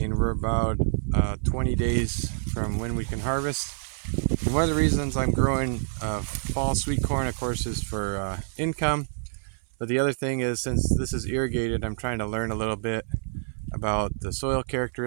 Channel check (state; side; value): silent; left; 57 dB below the other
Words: we're about 20 days from when we can harvest. And one of the reasons I'm growing fall sweet corn, of course, is for income. But the other thing is, since this is irrigated, I'm trying to learn a little bit about the soil